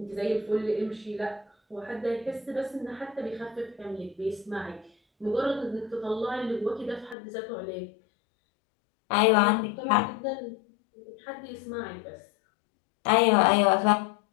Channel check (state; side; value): drops out; right; at 7.2 s